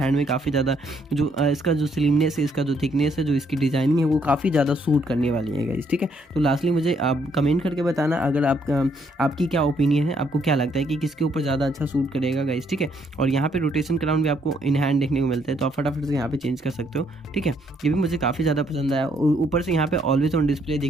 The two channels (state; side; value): normal; both; correlation 0.70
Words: में काफ़ी ज़्यादा जो इसका जो स्लिमनेस है, इसका जो थिकनेस है, जो इसकी डिज़ाइनिंग है, वो काफ़ी ज़्यादा सूट करने वाली है गाइस, ठीक है। तो लास्टली मुझे आप कमेंट करके बताना अगर आपकी क्या ओपिनियन है, आपको क्या लगता है कि किसके ऊपर ज़्यादा अच्छा सूट करेगा गाइस, ठीक है। और यहाँ पे रोटेशन क्राउन भी आपको इन हैंड देखने को मिलता है, तो आप फटाफट से यहाँ पे चेंज कर सकते हो, ठीक है। ये भी मुझे काफ़ी ज़्यादा पसंद आया। ऊपर से यहाँ पे ऑलवेज ऑन डिस्प्ले